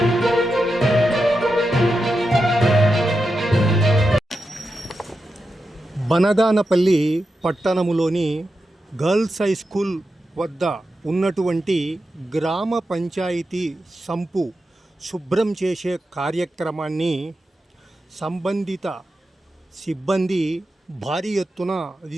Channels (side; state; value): both; normal; correlation 0.89